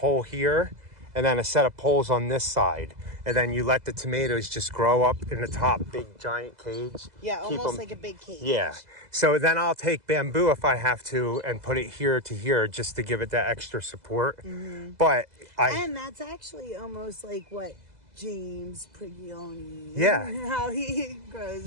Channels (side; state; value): left; late; 2.0 ms